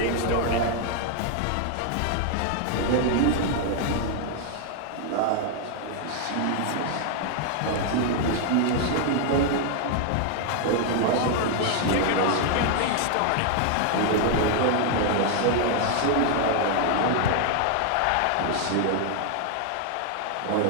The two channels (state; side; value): different; both; correlation 0.00